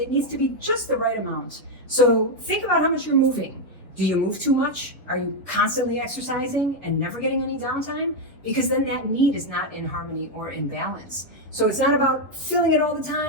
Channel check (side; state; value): both; normal; correlation 0.02